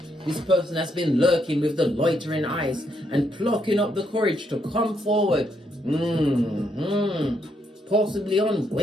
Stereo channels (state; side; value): normal; both; correlation 0.76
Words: This person has been lurking with the loitering eyes and plucking up the courage to come forward. Possibly on